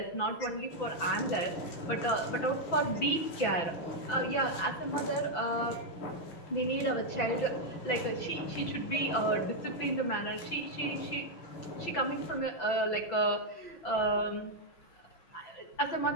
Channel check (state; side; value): late; right; 6.0 ms